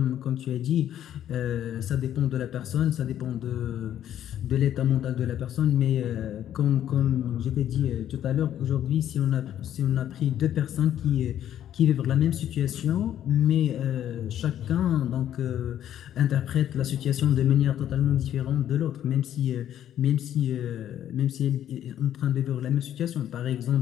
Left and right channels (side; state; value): right; quieter; 11.0 dB